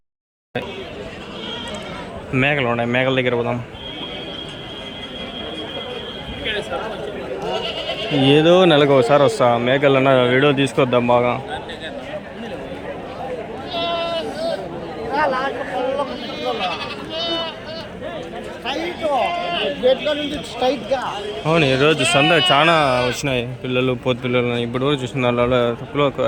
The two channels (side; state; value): both; identical; correlation 1.00